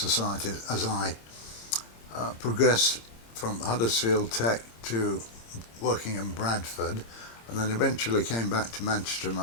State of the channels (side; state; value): right; late; 26 ms